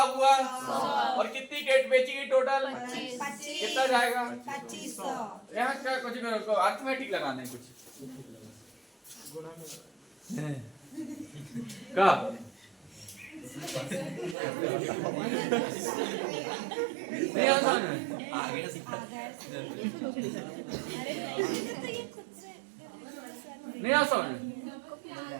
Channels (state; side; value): drops out; left; at 14.4 s